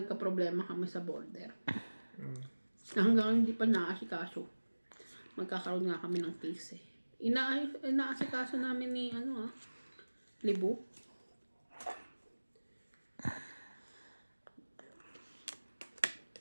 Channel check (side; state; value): both; inverted; correlation -1.00